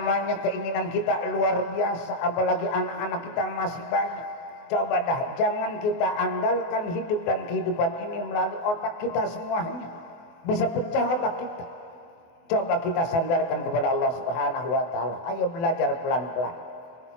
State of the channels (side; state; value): right; late; 24 ms